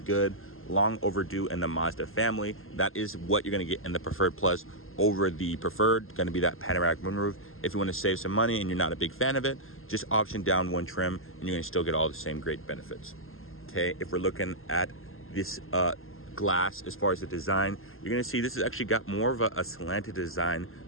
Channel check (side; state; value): right; late; 0.61 ms